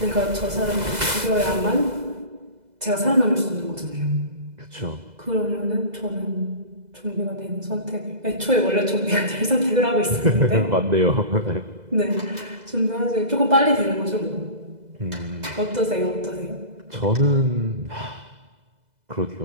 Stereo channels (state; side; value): late; left; 2.0 ms